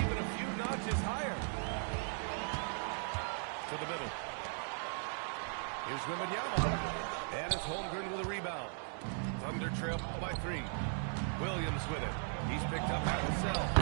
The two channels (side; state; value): left; silent; 53 dB below the other